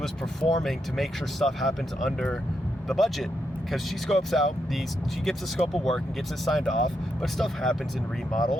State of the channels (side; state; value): both; normal; correlation 0.82